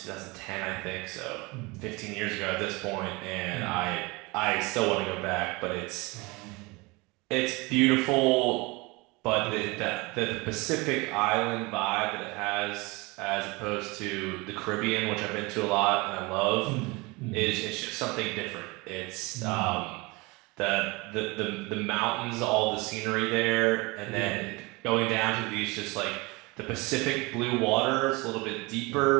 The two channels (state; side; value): quieter; left; 25.0 dB